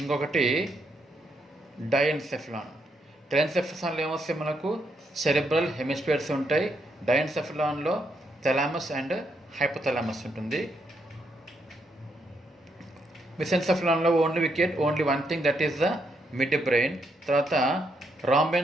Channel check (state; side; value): normal; both; correlation 0.77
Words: ఇంకొకటి డైఎన్సెఫలాన్. టెలెన్సెఫలాన్లో ఏమొస్తాయి మనకు? సెరిబ్రల్ హెమిస్పియర్స్ ఉంటాయి. డైఎన్సెఫలాన్లో థలామస్ అండ్ హైపోథలామస్ ఉంటుంది. మిసెన్సెఫలాన్లో only we get only one thing, that is the midbrain. తర్వాత